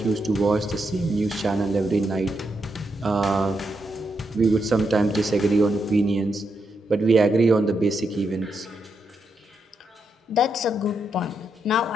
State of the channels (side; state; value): both; normal; correlation 0.82